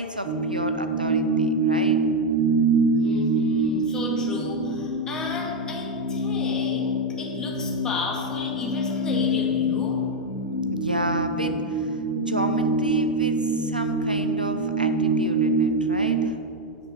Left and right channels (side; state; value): both; normal; correlation 0.04